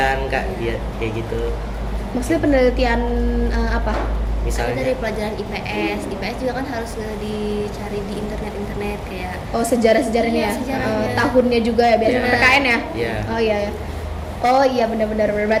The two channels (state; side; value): identical; both; correlation 1.00